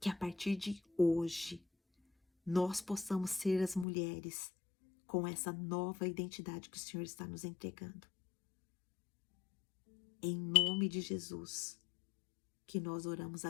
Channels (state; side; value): drops out; right; at 3.9 s